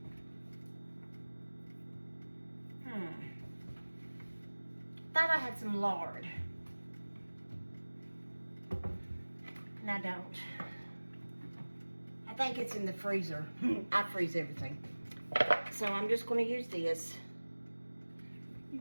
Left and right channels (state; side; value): inverted; both; correlation -1.00